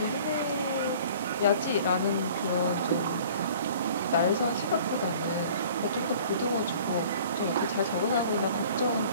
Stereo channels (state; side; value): inverted; both; correlation -0.49